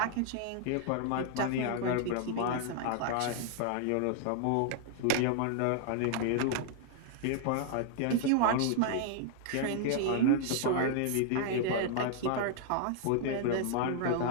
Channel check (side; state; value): both; different; correlation -0.01